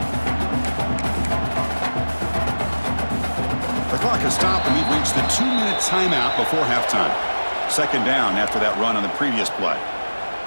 The clock has stopped, and we've reached the 2-minute timeout before halftime. 2nd down after that run on the previous play.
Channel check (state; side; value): inverted; both; correlation -1.00